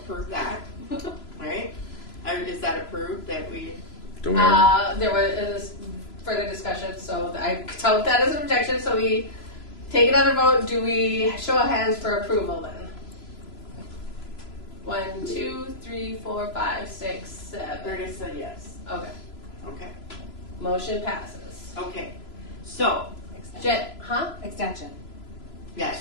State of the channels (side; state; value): right; late; 3.0 ms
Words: that, right? Is that approved that we? Don't we already- There was further discussion, so I count that as an objection, so we take another vote. Do we show of hands for approval then? 1, 2, 3, 4, 5, 6, 7. Curtis said yes. Okay. Okay. Motion passes. Okay. So. Extension.